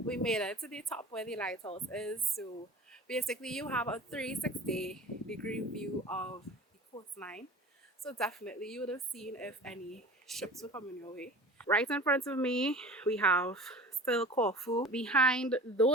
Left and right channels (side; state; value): both; normal; correlation 0.39